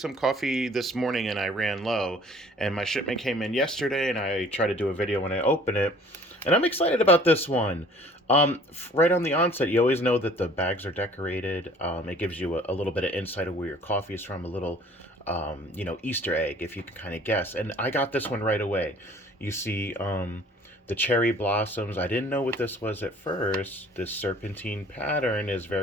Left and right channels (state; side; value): normal; both; correlation 0.52